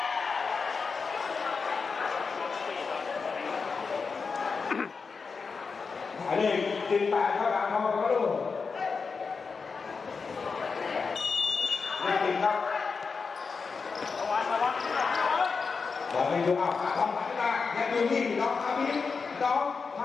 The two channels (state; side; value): quieter; right; 5.0 dB